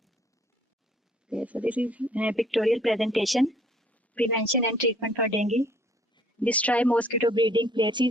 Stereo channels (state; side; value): normal; both; correlation 0.60